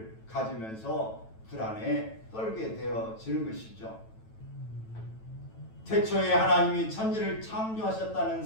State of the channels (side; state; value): right; late; 9.1 ms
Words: 가지면서 불안에 떨게 되어지는 것이죠. 태초에 하나님이 천지를 창조하셨다는